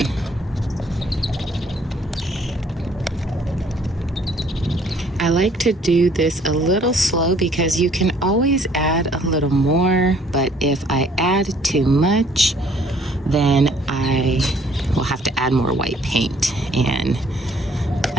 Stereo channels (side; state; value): both; normal; correlation 0.60